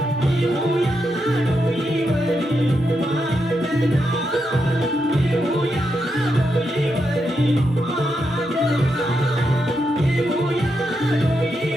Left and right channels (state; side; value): normal; both; correlation 0.83